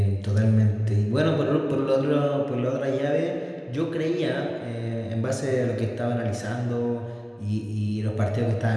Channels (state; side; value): identical; both; correlation 1.00